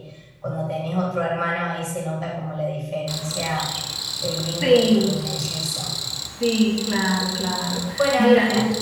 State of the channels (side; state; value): both; identical; correlation 1.00